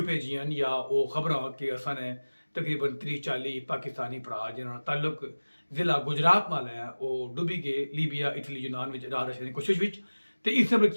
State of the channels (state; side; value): inverted; both; correlation -1.00